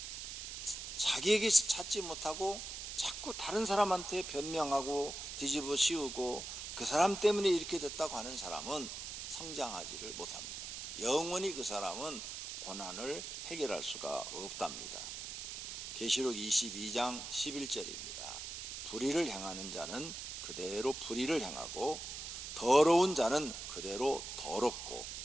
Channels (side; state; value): right; noise; hiss, 7 dB below the sound